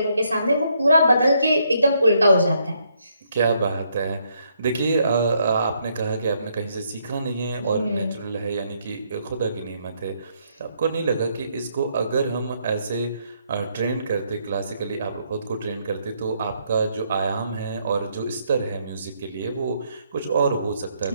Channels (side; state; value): both; inverted; correlation -0.73